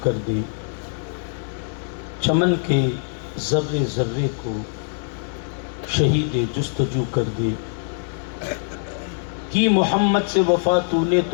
کر دے، چمن کے ذرے ذرے کو شہید جستجو کر دے۔ کی محمد سے وفا تو نے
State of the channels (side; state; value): right; silent; 63 dB below the other